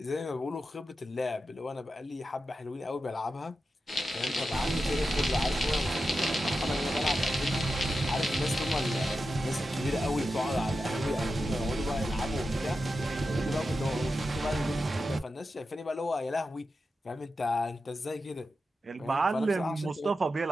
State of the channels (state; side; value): normal; both; correlation 0.90